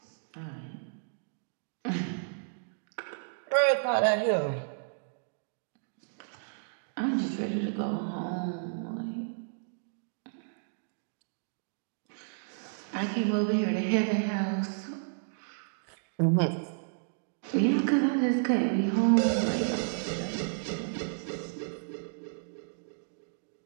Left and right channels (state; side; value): silent; left; digital silence